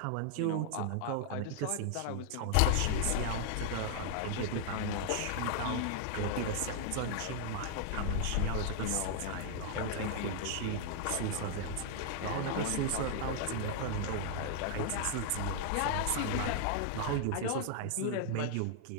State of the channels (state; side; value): different; both; correlation 0.00